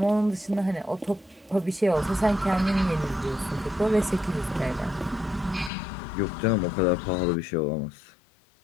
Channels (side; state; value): right; drops out; at 5.7 s